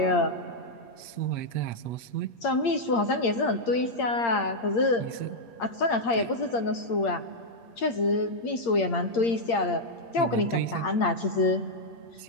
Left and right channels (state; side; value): late; right; 8.7 ms